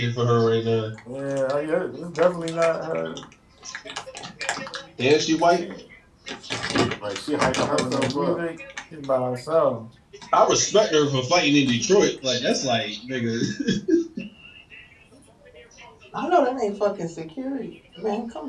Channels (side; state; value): both; identical; correlation 1.00